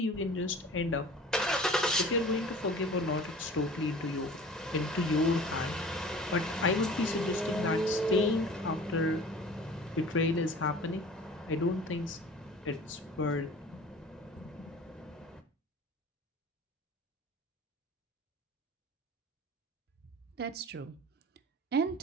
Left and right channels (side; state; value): both; normal; correlation 0.44